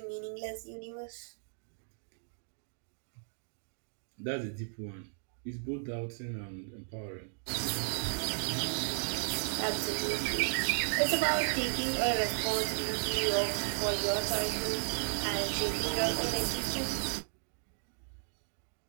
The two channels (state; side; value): silent; left; digital silence